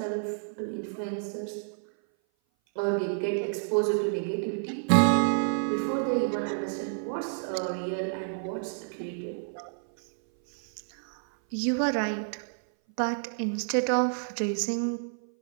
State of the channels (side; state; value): left; silent; 57 dB below the other